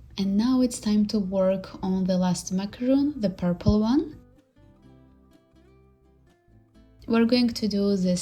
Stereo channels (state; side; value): identical; both; correlation 1.00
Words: And now it's time to work on the last macaroon, the purple one. We're going to do the